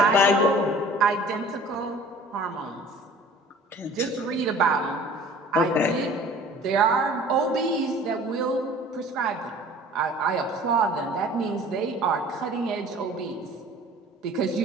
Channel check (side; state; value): both; normal; correlation 0.47